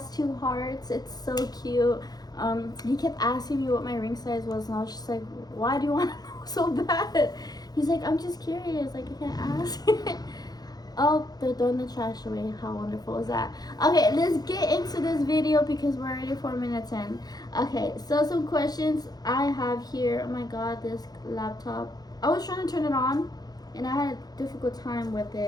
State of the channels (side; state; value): right; late; 0.19 ms